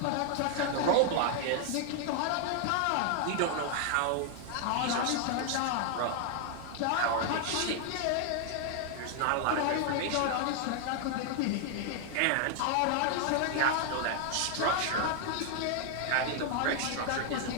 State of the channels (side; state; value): both; different; correlation 0.00